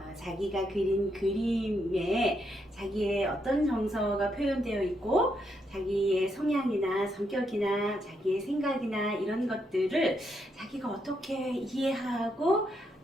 자기가 그린 그림에 자기의 어떤 정서가 표현되어 있고 자기의 성향이나 성격이나 자기의 생각이나 이런 것들을 자기가 어떻게 이해하고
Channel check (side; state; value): both; normal; correlation 0.78